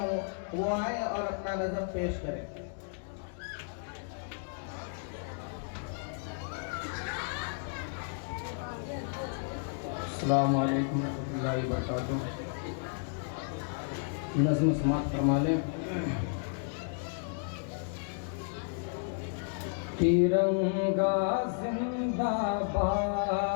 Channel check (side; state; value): right; silent; digital silence